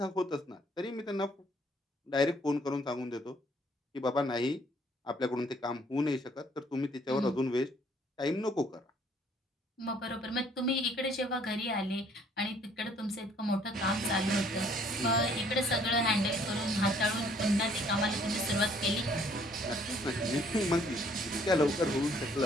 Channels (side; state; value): both; normal; correlation 0.62